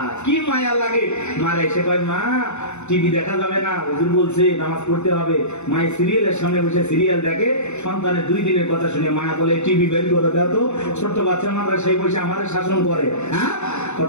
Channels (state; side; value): late; right; 0.82 ms